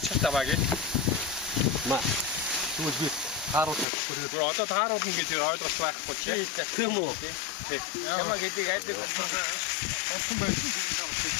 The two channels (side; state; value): right; drops out; at 3.9 s